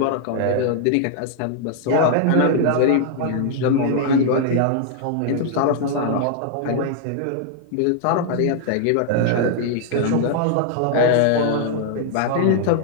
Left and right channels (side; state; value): both; different; correlation 0.00